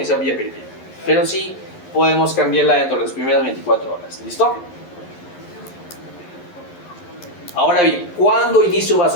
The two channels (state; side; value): late; right; 11 ms